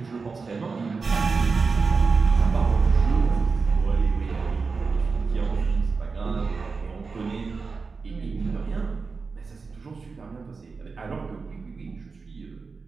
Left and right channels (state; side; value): quieter; left; 4.6 dB